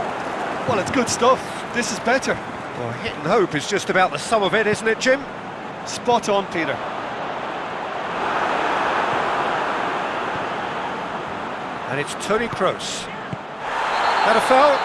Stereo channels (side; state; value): both; identical; correlation 1.00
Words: Well, it's good stuff. This is better. Well, hit and hope is just about the sum of it, isn't it, Jim? Spot on, Peter. And it's Toni Kroos. Had a foul?